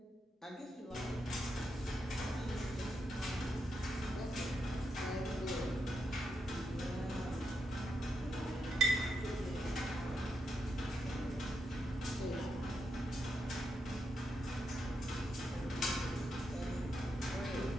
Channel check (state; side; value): normal; both; correlation 0.84